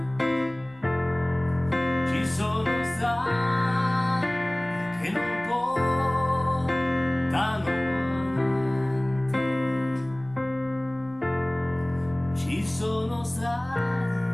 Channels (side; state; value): left; noise; rumble, 29 dB below the sound